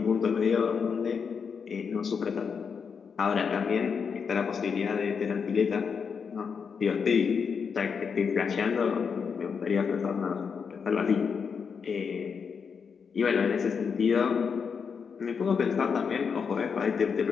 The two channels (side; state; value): right; quieter; 6.1 dB